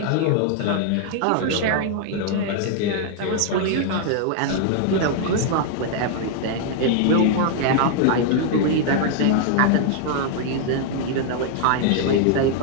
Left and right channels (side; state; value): both; different; correlation 0.00